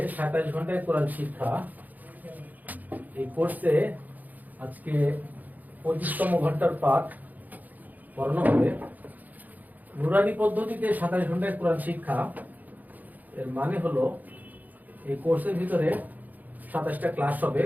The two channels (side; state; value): left; late; 0.081 ms